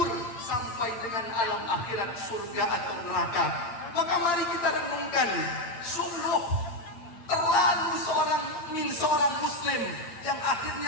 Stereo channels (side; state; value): right; late; 8.4 ms